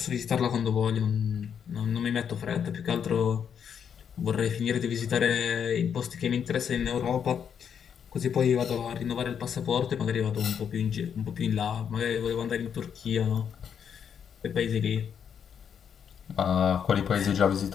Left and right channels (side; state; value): right; quieter; 7.8 dB